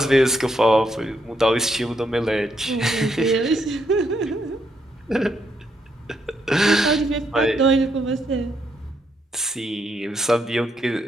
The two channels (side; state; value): both; normal; correlation 0.76